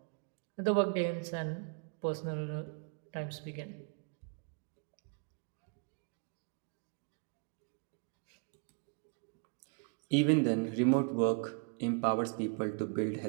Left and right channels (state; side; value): quieter; left; 35.2 dB